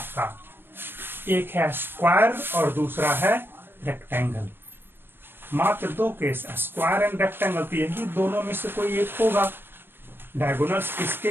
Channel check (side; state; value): left; late; 0.10 ms